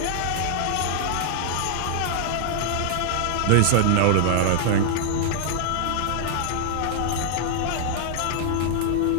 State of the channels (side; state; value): both; different; correlation -0.01